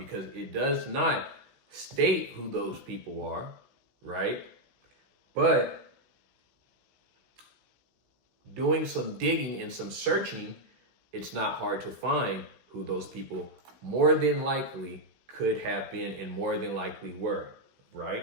it does not state who those people are, right? But doing some digging and some searching, it's not hard to find who those people more than likely could have been and more than likely were,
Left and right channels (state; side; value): late; left; 16 ms